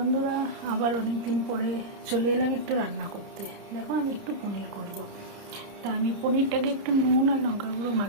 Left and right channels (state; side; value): late; left; 30 ms